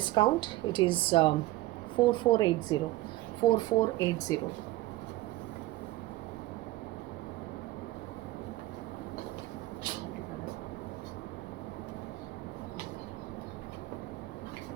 it is 4480. 4480.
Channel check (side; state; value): left; quieter; 17.2 dB